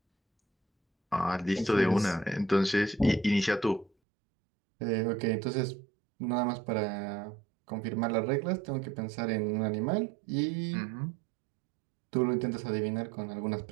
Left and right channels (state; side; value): drops out; left; at 3.9 s